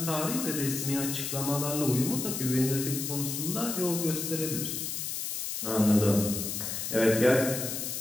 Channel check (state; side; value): noise; left; hiss, 4 dB below the sound